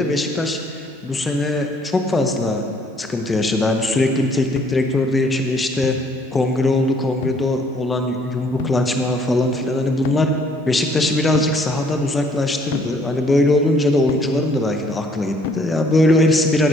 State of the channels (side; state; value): both; normal; correlation 0.62